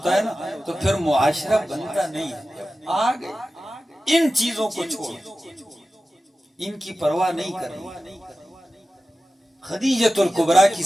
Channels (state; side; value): normal; both; correlation 0.94